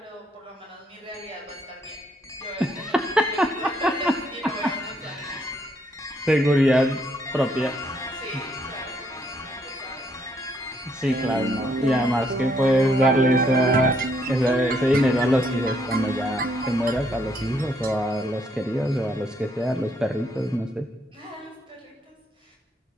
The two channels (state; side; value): normal; both; correlation 0.71